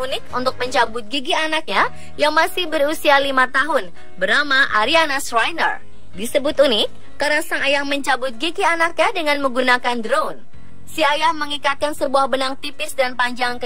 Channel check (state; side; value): identical; both; correlation 1.00